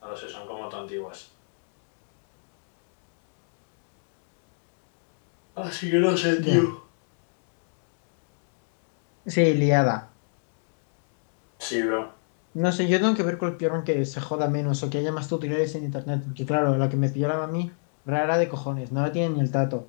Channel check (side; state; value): right; silent; digital silence